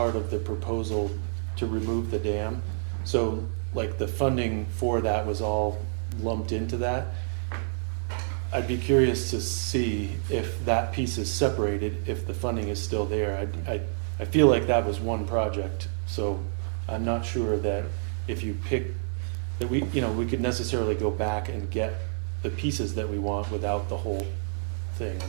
of the proposal to remove the dam. So like the funding for that was all lumped into that. I'd be curious to see if that piece is separated, if the funding is still there. I feel like that was one project, so I'm not sure that if you pick, that we could necessarily go back and get the pieces that we want without the whole thing.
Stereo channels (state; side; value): silent; left; digital silence